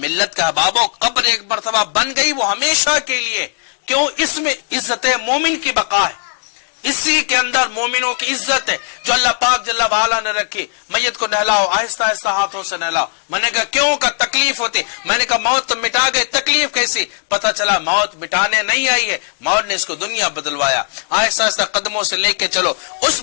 کا بابو قبر ایک مرتبہ بن گئی وہ ہمیشہ کے لیے، کیوں؟ اس میں عزت مومن کی بقا ہے، اسی کے اندر مومنوں کی عزت ہے جو اللہ پاک جل وعلا نے رکھی. میت کو نہلاؤ، آہستہ آہستہ ہاتھوں سے نہلاؤ. میں نے کہا کیوں؟ کا تکلیف ہوتی. میں نے کہا موت تو مٹا گئے، تکلیف کیسی؟ پتہ چلا موت مٹانے نہیں آئی ہے، موت نے اس کو دنیا بدلوایا. آہستہ آہستہ قدموں سے لے کے چلو. اس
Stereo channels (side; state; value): right; silent; digital silence